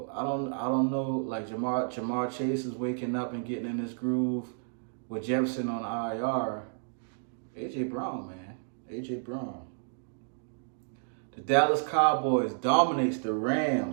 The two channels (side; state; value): left; silent; digital silence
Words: know. Like, Jamar Chase is waking up and getting in this groove with Jefferson on IR. AJ Brown, man. AJ Brown. The Dallas Cowboys dominates the